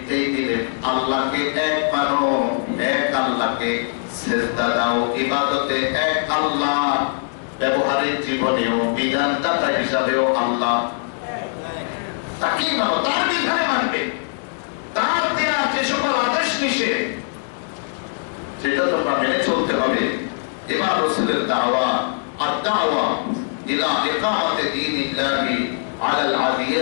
দিলেন, আল্লাহকে এক মানো, এক আল্লাহকে সিজদা দাও, ইবাদতে এক আল্লাহ, ব্যবহারিক জীবনেও বিধানদাতা হিসাবেও আল্লাহ, তাকে মানো, তার বিধানে মানবে, তার দেয়া যে সকল আদেশ নিষেধ সেটা তোমরা মেনে চলতে হবে। এবার রাসূলের দাওয়াত, আদ-দাওয়া ইলা ইকামাতি দীনিল্লাহি আলাল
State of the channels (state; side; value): silent; right; digital silence